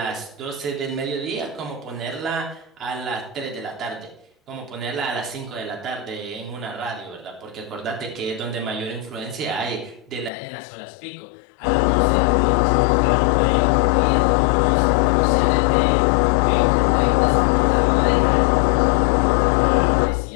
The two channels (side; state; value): right; drops out; at 10.3 s